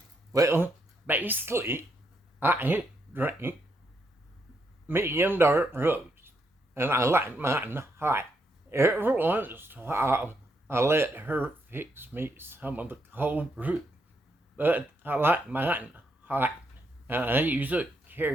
well, basically, I drink medium dark roast, and I like mine hot. Every once in a while, I let her fix me some of the cold brew, but I like mine hot, and I use a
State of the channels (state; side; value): normal; both; correlation 0.78